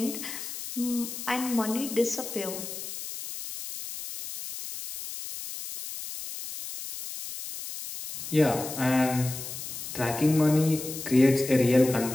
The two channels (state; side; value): noise; left; hiss, 9 dB below the sound